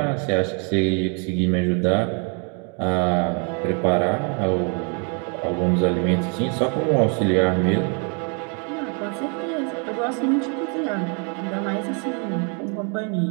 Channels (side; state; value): left; quieter; 38.0 dB